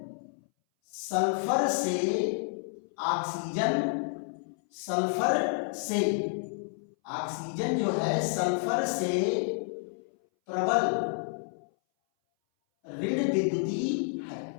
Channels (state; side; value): silent; right; 58 dB below the other